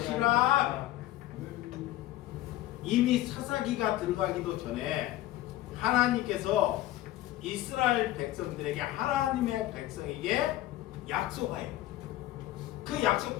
이미 사사기가 들어가기도 전에 하나님께서 이스라엘 백성들에게, 하나님의 백성에게 약속해요. 그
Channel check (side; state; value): right; quieter; 15.1 dB